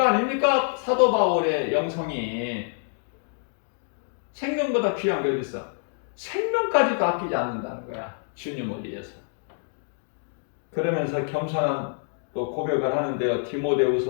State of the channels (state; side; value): silent; right; digital silence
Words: 아닙니까? 사도 바울의 영성이. 생명보다 귀한 게 어디 있어? 생명까지도 아끼지 않는다는 거야. 주님을 위해서. 그러면서 겸손한 또 고백을 하는데요.